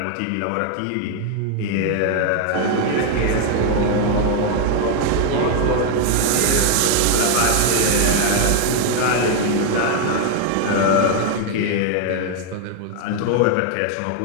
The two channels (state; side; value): different; both; correlation 0.00